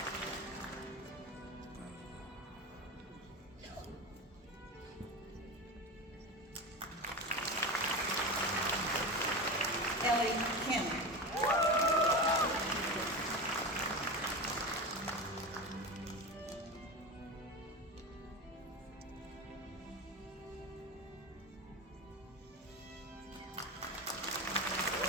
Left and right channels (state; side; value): normal; both; correlation 0.23